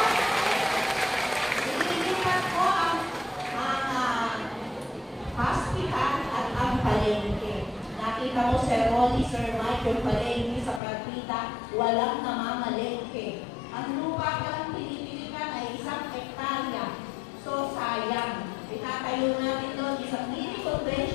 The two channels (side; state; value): right; drops out; at 10.8 s